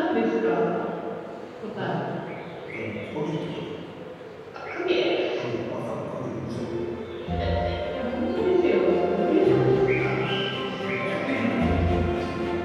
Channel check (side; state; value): both; identical; correlation 1.00